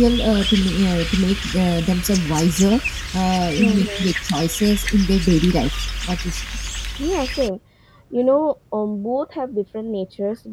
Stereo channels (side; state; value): both; identical; correlation 1.00